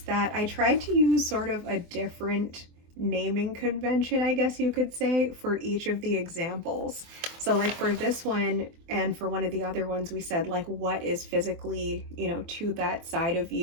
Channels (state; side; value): late; left; 24 ms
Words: I tried to use sort of a different naming convention, I guess you could say, for each of the examples. So like for this one and for one of the other ones, we said like what is physically, you know, to that side of